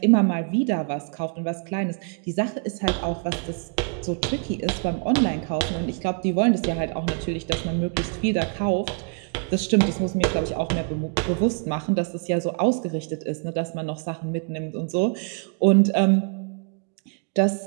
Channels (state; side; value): quieter; left; 39.2 dB